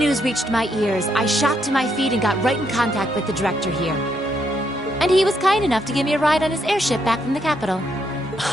reached my ears, I shot to my feet and got right in contact with the director here. And he was kind enough to give me a ride on his airship back from the capital.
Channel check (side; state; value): both; normal; correlation 0.76